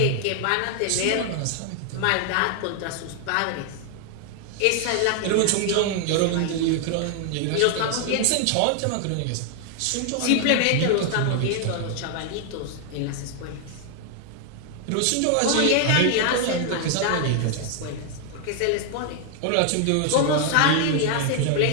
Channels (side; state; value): both; different; correlation 0.00